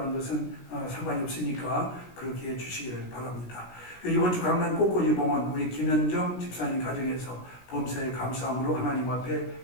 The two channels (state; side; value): late; right; 16 ms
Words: 것은 상관이 없으니까 그렇게 해주시기를 바랍니다. 이번 주 강남 꽃꽂이 봉헌 우리 김현정 집사님 가정에서 범사에 감사함으로 하나님 앞에